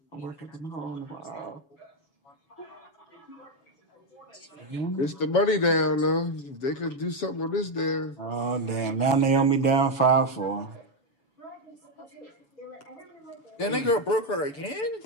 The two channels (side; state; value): right; late; 7.1 ms